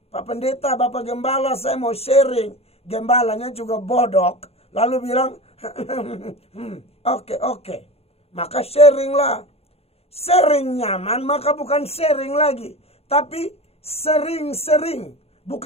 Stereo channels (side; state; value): right; late; 0.29 ms